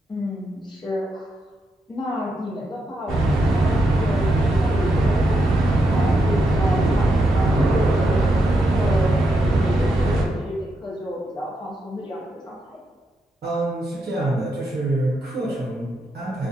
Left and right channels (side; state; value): both; normal; correlation 0.82